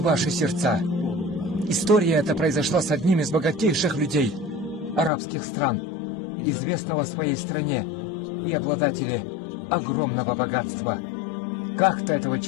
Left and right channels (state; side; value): drops out; right; at 5.1 s